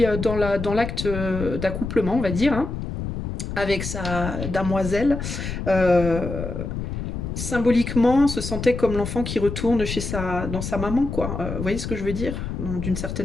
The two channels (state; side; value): noise; left; rumble, 5 dB below the sound